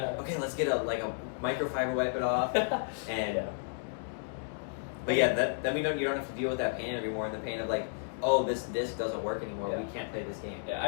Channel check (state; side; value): silent; right; digital silence